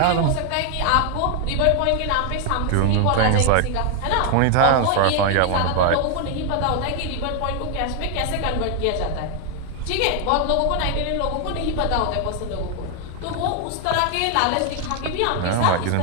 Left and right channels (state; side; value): different; both; correlation 0.00